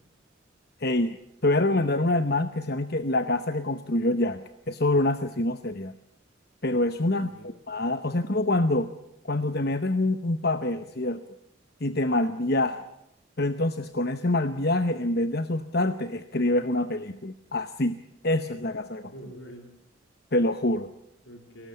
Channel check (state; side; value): normal; both; correlation 0.27